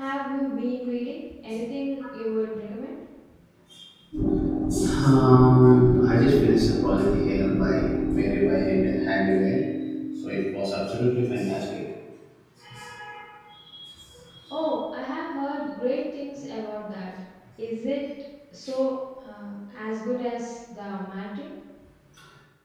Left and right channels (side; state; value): both; identical; correlation 1.00